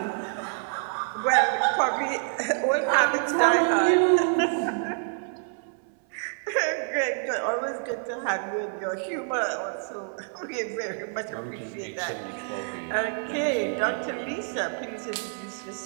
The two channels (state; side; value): silent; left; 60 dB below the other